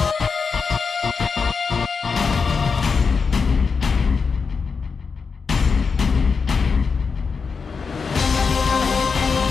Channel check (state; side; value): quieter; right; 5.3 dB